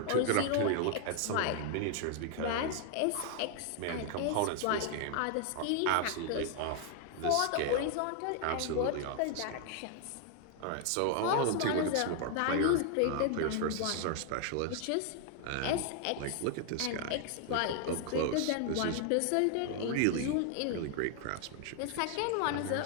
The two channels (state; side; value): different; both; correlation 0.00